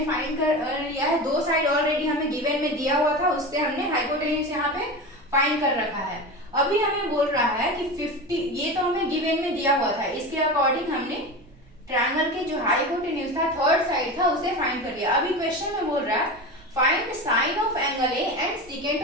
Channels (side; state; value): right; noise; rumble, 26 dB below the sound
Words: फाइंड कर लिया है। दो साइड ऑलरेडी हमें गिवन में दिया हुआ था, उससे हमने हाइपोटेन्यूज यहाँ पे फाइंड कर रखा है। अभी हमें बोल रहा है कि 50, ये तो हमें गिवन में दिया हुआ था, इसके अकॉर्डिंग हमने ट्रायंगल के जो हाइपोटेन्यूज था, थर्ड साइड था, उसे फाइंड कर लिया। अभी क्वेश्चन में बोल रहा है find sign of angle A and